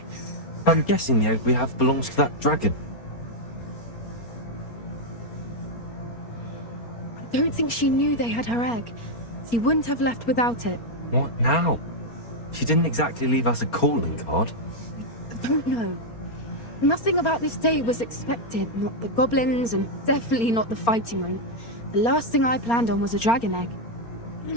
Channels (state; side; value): late; right; 4.3 ms